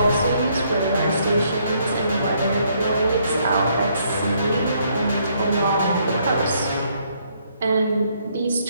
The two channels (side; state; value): both; inverted; correlation -0.70